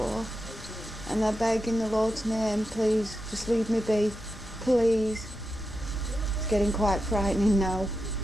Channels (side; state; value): both; normal; correlation 0.89